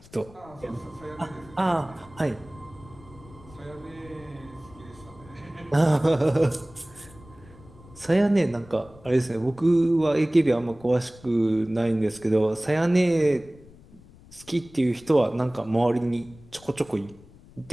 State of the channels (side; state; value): left; noise; rumble, 22 dB below the sound